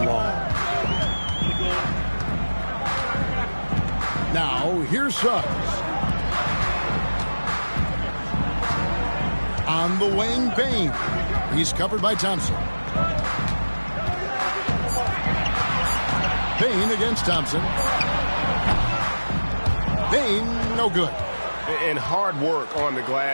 Now, here's Suggs. On the wing, Bane. He's covered by Thompson. Bane against Thompson. Bane, no good. And hard work on the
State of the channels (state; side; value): inverted; both; correlation -1.00